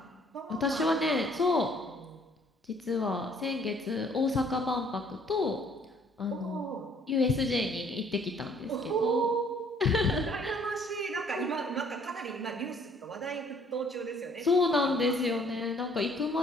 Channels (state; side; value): normal; both; correlation 0.60